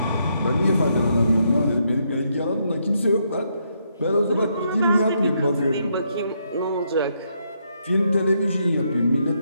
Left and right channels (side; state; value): both; inverted; correlation -0.76